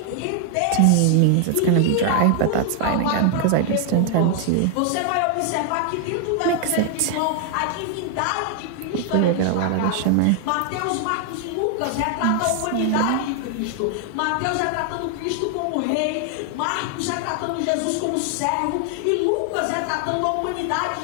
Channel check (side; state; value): both; different; correlation 0.00